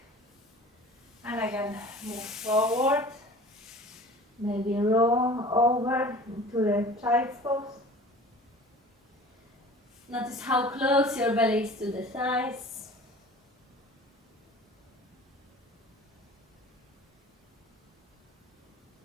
And again, move forward. Maybe roll over into the child's pose. Notice how close your belly is to the thighs.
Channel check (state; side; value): normal; both; correlation 0.43